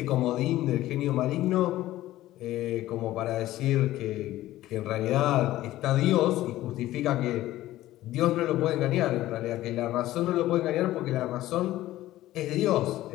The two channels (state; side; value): quieter; right; 15.2 dB